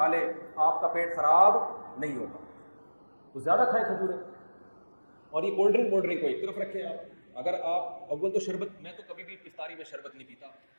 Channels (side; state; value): both; inverted; correlation -1.00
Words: لیں آپ کا پیٹ خراب نہیں ہوگا. تو زیادہ کھائیں کھجوریں. اور یہ کولڈ ڈرنک کو ایک طرف رکھیں آپ. اگر آپ اول تو شربت, میں تو کبھی بھی افطاری میں شربت نہیں پیتا,